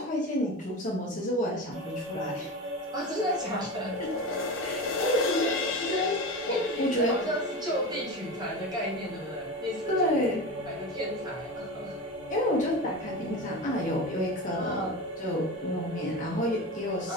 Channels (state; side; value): normal; both; correlation 0.26